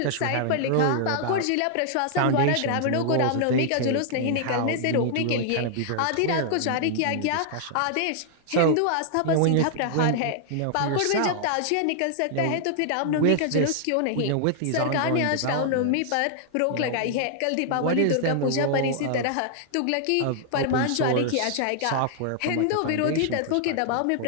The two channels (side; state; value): both; different; correlation -0.01